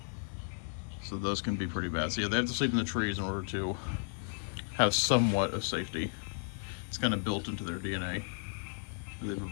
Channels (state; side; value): silent; right; 55 dB below the other